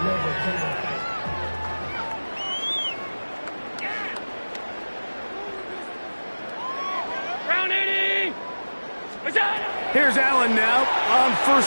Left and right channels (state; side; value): inverted; both; correlation -1.00